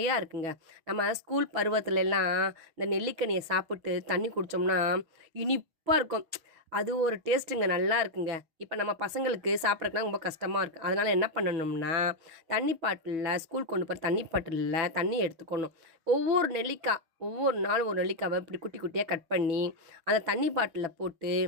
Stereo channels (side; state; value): left; late; 6.1 ms